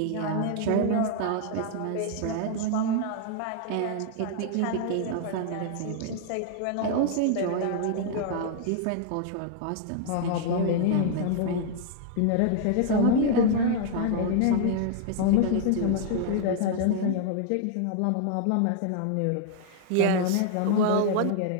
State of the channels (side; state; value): both; different; correlation -0.01